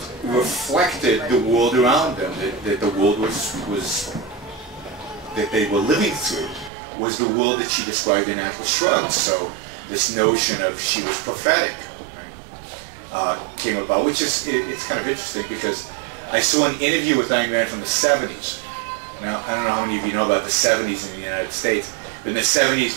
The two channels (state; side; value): drops out; left; at 6.7 s